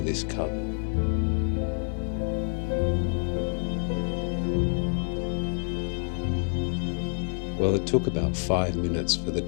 this covered. Well, it took about 5 minutes for the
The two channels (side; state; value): right; silent; 56 dB below the other